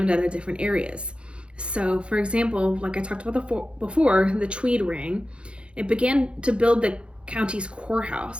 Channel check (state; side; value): late; left; 0.057 ms